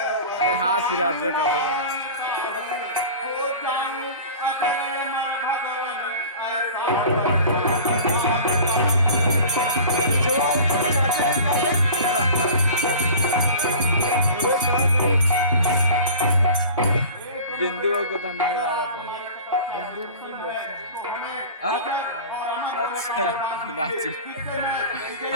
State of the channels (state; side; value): inverted; both; correlation -0.39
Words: अरे हाँ सिराज का बिंदु को धंधा लगा अच्छा नाची